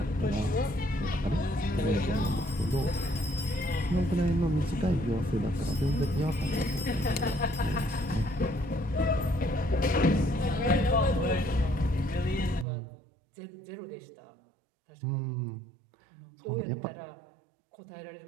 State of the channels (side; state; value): left; drops out; at 12.7 s